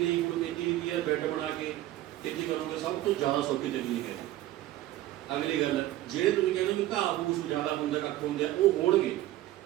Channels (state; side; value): quieter; left; 15.0 dB